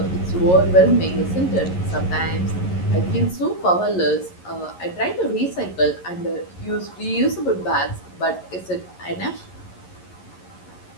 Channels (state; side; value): late; right; 11 ms